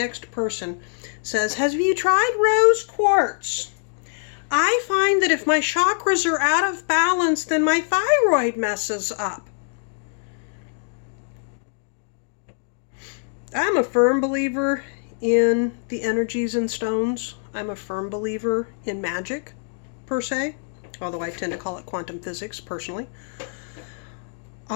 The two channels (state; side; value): silent; right; 63 dB below the other